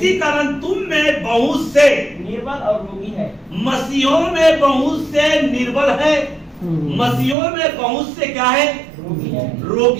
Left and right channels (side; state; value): left; drops out; at 7.4 s